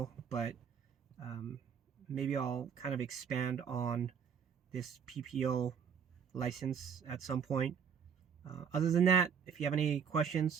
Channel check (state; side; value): quieter; left; 7.1 dB